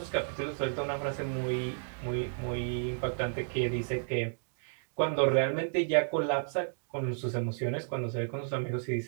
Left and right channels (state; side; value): silent; left; digital silence